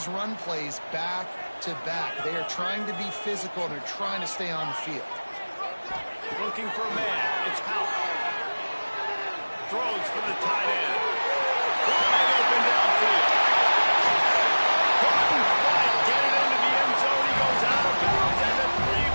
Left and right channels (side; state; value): both; inverted; correlation -1.00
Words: run plays back to back. They are trying to be physical, and they're trying to stay on the field. Looking for a man. It's Hout. Throws for the tight end. Wide open downfield. Couldn't quite get it into the end zone. He goes out of bounds at the 3,